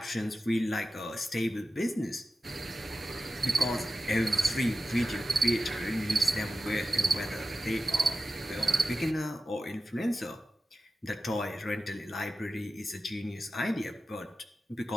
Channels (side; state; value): both; normal; correlation 0.93